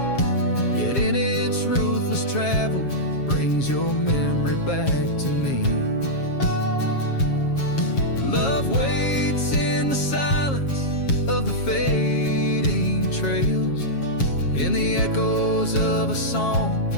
yet in its ruthless travel brings your memory back to me. Love waits in the silence of the fading trails, in the echoes of a song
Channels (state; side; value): late; right; 7.3 ms